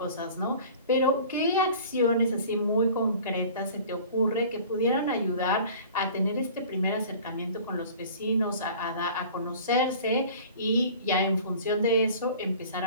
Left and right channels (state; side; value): inverted; both; correlation -0.44